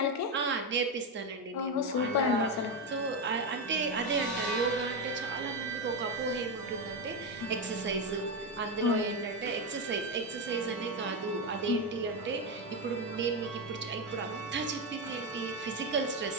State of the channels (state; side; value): normal; both; correlation 0.10